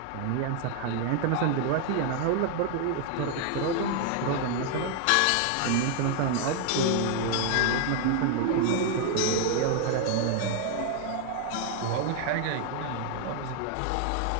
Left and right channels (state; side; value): different; both; correlation 0.00